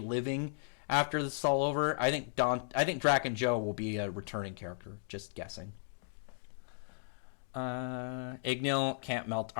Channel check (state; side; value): silent; right; digital silence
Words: after this is all over. I think Draken Joe will be a returning character. Just guessing. Ignil can't melt